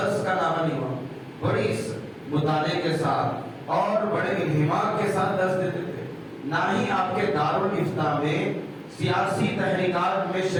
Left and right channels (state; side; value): identical; both; correlation 1.00